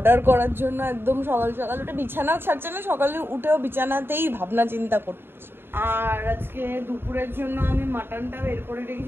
করার জন্য একদম সকাল সকাল উঠে, বিছানাও ছাড়ছে না, সকালে উঠেও বিছানাতেই ভাবনা চিন্তা করছে। আর আজকে দুপুরের জন্য আমি মাটনটা বের করে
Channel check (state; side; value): late; left; 0.11 ms